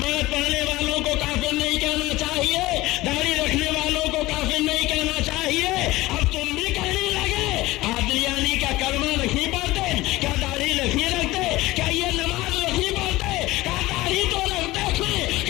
پڑھنے والوں کو کافر نہیں کہنا چاہیے, داڑھی رکھنے والوں کو کافر نہیں کہنا چاہیے, اب تم بھی کہنے لگے قادیانی کا کلمہ نہیں پڑھتے, کیا داڑھی نہیں رکھتے, کیا یہ نماز نہیں پڑھتے, کیا داڑھی تو رکھتے ہیں,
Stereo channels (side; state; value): right; quieter; 18.7 dB